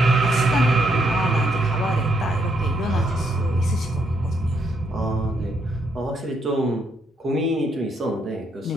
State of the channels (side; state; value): both; normal; correlation 0.75